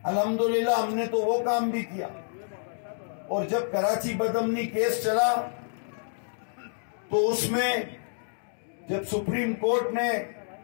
अल्हम्दुलिल्लाह हमने तो वो काम भी किया। और जब कराची बदअमनी केस चला तो उसमें जब सुप्रीम कोर्ट ने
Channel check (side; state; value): right; silent; digital silence